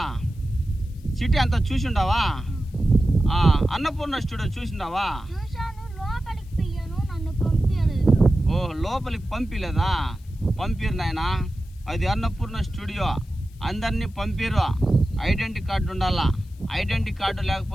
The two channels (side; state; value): left; noise; hiss, 29 dB below the sound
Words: సిటీ అంతా చూసిండావా? అన్నపూర్ణ స్టూడియో చూసిండావా? ఓ లోపలికి పంపిలేదా? పంపిరు నాయనా, అది అన్నపూర్ణ స్టూడియో, అందరినీ పంపిరు. ఐడెంటిటీ కార్డు ఉండాలా, ఐడెంటిటీ కార్డు